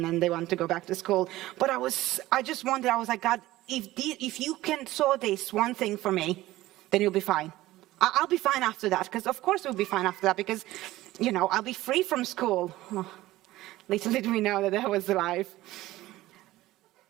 and they want to go back to school. But I was like, God, if you can sort this one thing for me, then you'll be fine. I'll be fine after that, because of course we'll be fine after that, because, I'll be free from school. Oh, little did we know that was the life.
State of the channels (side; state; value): left; quieter; 16.7 dB